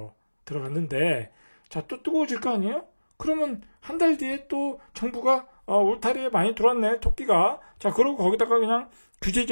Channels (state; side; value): inverted; both; correlation -1.00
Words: 들어갔는데, 자, 또 뜨거워질 거 아니에요? 그러면 한 달 뒤에 또 정부가 울타리에 많이 들어왔네, 토끼가. 자, 그러고 거기다가 그냥